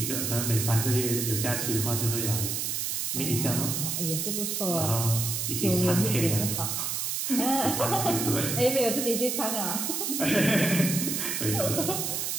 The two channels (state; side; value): noise; right; hiss, 1 dB below the sound